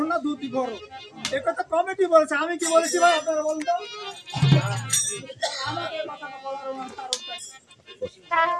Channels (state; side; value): identical; both; correlation 1.00